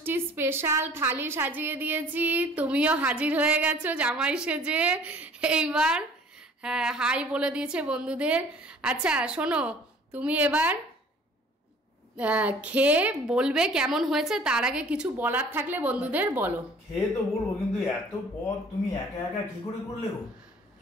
স্পেশাল থালি সাজিয়ে দিয়েছি, তুমিও হাজির হয়ে গেছো জামাই সেজে। এইবার হ্যাঁ হাই বলে দিয়েছে বন্ধুদের। আচ্ছা শোনো, তুমি এবার খেয়ে বলবে কেমন হয়েছে। তার আগে কিছু বলার থাকলে বন্ধুদের বলো। খেয়ে তো বলবো, কিন্তু এত পদ তুমি একা একা কি করে করলে গো?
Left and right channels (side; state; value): both; normal; correlation 0.51